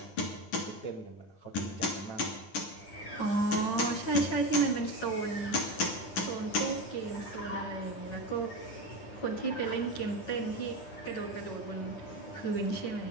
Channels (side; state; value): right; late; 11 ms